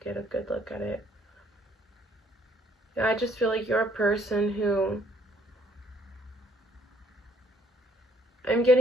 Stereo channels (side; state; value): both; normal; correlation 0.66